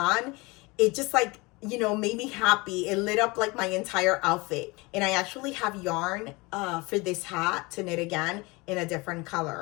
It just like, made me happy. It lit up like my entire outfit. And I actually have yarn for this hat to knit again in a different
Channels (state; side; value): quieter; right; 25.0 dB